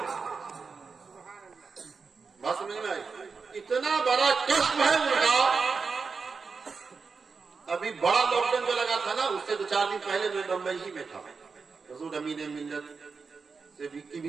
بات سمجھ میں آئی؟ اتنا بڑا کشف ہے ان کا۔ ابھی بڑا لاک ڈاؤن جو لگا تھا نا، اس سے 2-4 دن پہلے میں بمبئی ہی میں تھا۔ حضور امین ملت سے کی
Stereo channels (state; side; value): quieter; left; 5.0 dB